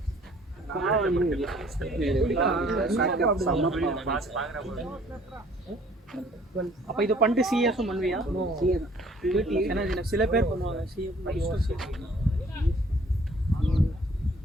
அப்ப இது பண்ணிட்டு சிஎஸும் பண்ணுவியா? ஏன்னா சில பேர் பண்ணுவாங்க சிஏ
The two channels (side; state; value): both; normal; correlation 0.57